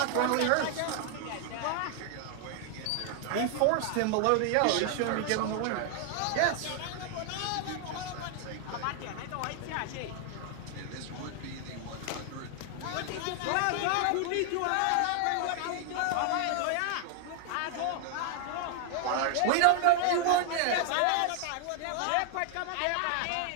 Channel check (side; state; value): both; different; correlation 0.00